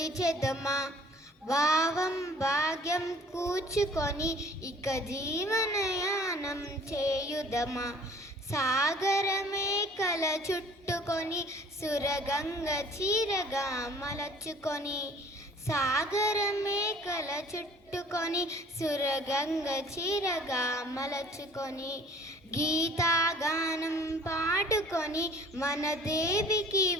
భావం భాగ్యం కూర్చుకొని ఇక జీవనయానం చేయుదమా. సాగరమే కల చుట్టుకొని సురగంగ చీరగా మలచుకొని, సాగరమే కల చుట్టుకొని సురగంగ చీరగా మలచుకొని, గీతాగానం పాడుకొని మన దేవికి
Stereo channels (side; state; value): both; normal; correlation 0.51